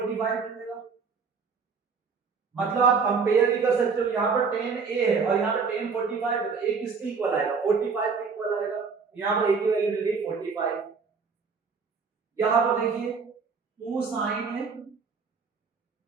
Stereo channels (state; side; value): quieter; left; 5.2 dB